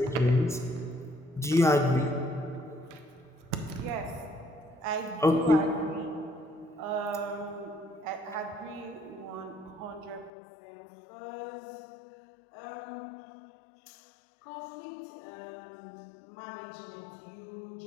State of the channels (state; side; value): drops out; right; at 10.3 s